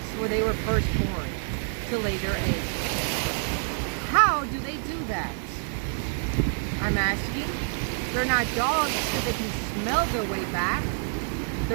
where they were first born to lay their eggs. How do they do that? I'm asking. They're not dogs so they can smell their way back.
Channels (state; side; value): silent; left; 60 dB below the other